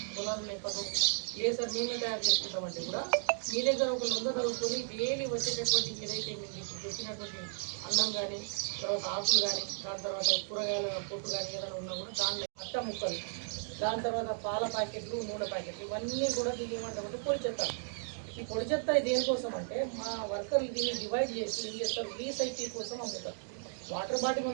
పొలాలు లేకపోతే లేదు సార్ మేమే తయారు చేసుకుంటామంటే కూడా మీ దగ్గర ఒక లొంగ చదువుకొని డైలీ వచ్చేటటువంటి ఏదైతే మీరు ఇప్పుడు చెప్పినటువంటి అన్నం కానీ, తర్వాత ఆకులు కానీ, దాని తర్వాత కూరగాయల పొట్టు కానీ ఏదైనా ఉన్నా కూడా దానిలో అట్ట ముక్కలు, దాని తర్వాత పాల ప్యాకెట్లు, నూనె ప్యాకెట్లు ఇవన్నీ కూడా దీన్ని ఏమంటామంటే పొడి చెత్త. ఈ పొడి చెత్త దేనికోసం అంటే మా వర్కర్లు దీన్ని డివైడ్ చేసి ఏం చేస్తారు, రీసైకిల్ కోసం అమ్ముతారు. వాటర్ బాటిల్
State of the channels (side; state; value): left; silent; digital silence